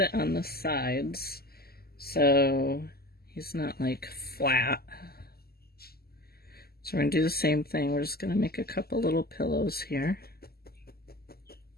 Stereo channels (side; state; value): right; late; 0.45 ms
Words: on the sides so he's not like flat. So we're going to do the same thing. We're just going to make a couple little pillows here.